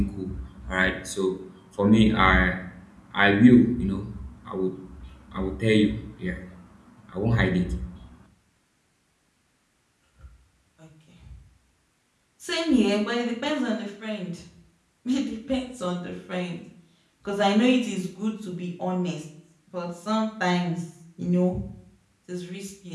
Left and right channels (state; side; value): identical; both; correlation 1.00